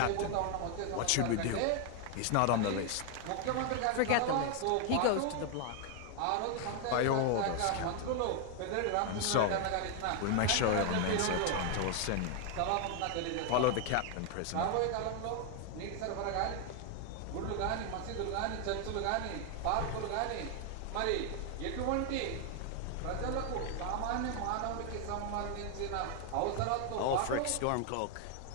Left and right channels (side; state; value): both; different; correlation 0.00